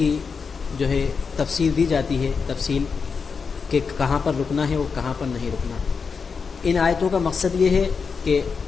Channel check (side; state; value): right; quieter; 5.4 dB